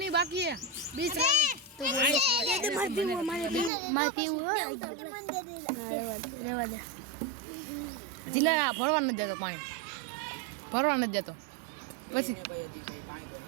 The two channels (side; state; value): left; drops out; at 3.7 s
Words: ही बाकी है 20 रन तो मार पीऊ रेवा दे जिला भरवा न देतो पानी भरवा न देतो પછી